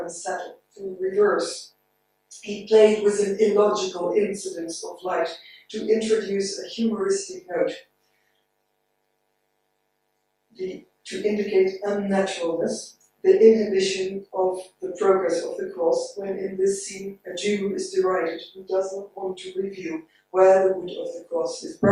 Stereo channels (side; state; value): both; identical; correlation 1.00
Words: unsettle, to reverse. He played with an illogical incidence of light to introduce a humoristic note, to indicate unnaturalness, the inhibition of the progress of the cross, when in this scene a Jew is derided who does not want to reveal where the wood of the cross is